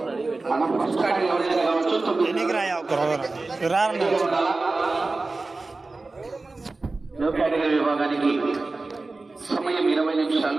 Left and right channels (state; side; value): quieter; left; 3.4 dB